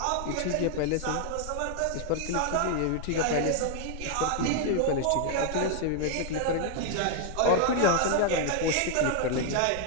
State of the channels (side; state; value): both; different; correlation 0.00